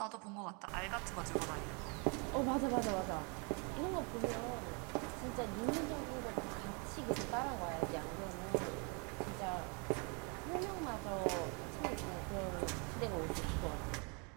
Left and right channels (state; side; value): quieter; left; 34.2 dB